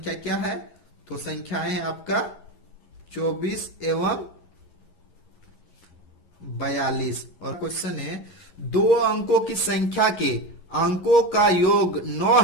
क्या है? तो संख्याएं है आपका 24 एवं 42। और क्वेश्चन है, दो अंकों की संख्या के अंकों का योग 9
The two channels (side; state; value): right; late; 11 ms